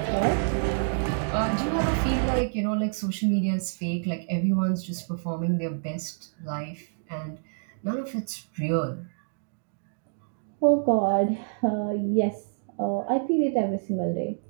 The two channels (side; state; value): left; silent; digital silence